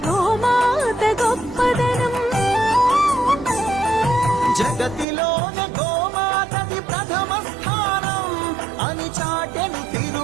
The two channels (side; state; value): left; drops out; at 5.1 s